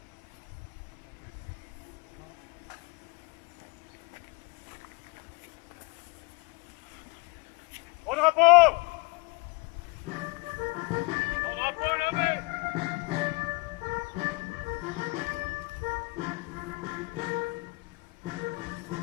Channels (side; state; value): right; quieter; 26.8 dB